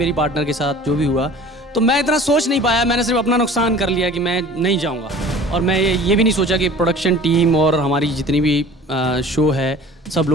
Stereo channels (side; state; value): both; normal; correlation 0.45